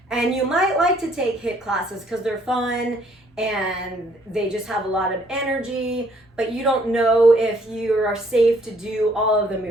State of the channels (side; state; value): both; normal; correlation 0.64